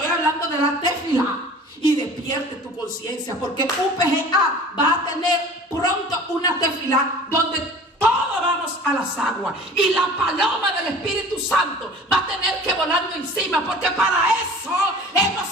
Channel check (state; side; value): normal; both; correlation 0.43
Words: hablando de la tefilá. Y despierte tu conciencia, porque UPGA va a tener pronto una tefilá donde todos vamos a las aguas y la paloma del Espíritu Santo va a tener que volando encima, porque para eso hemos